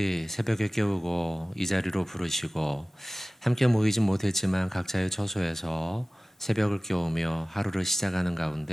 새벽에 깨우고 이 자리로 부르시고 함께 모이진 못했지만 각자의 처소에서 새벽을 깨우며 하루를 시작하는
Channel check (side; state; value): both; normal; correlation 0.98